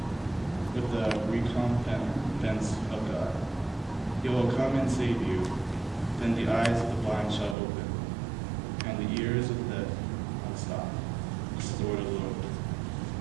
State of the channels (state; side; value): drops out; left; at 7.6 s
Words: with the recompense of God. He will come and save you. Then the eyes of the blind shall open, and the ears of the deaf unstop. This is the word of the Lord.